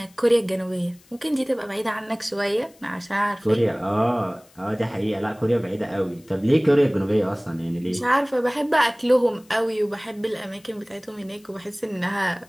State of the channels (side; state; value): left; noise; hiss, 29 dB below the sound